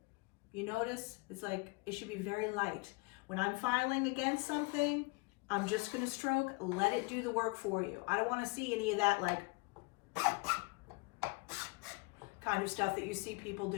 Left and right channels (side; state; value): right; quieter; 28.5 dB